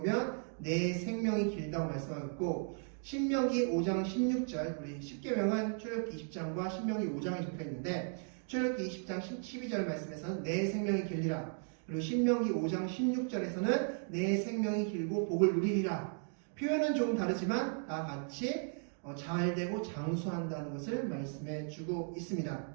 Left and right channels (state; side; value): silent; left; 54 dB below the other